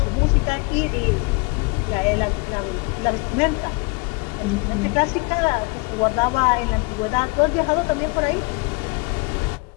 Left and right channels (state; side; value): quieter; right; 28.8 dB